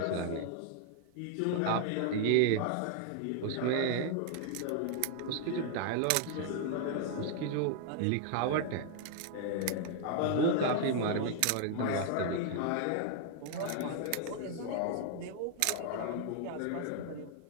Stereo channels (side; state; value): both; different; correlation 0.00